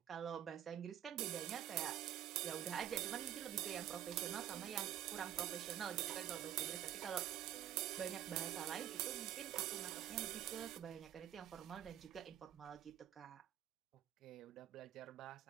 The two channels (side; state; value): left; quieter; 11.3 dB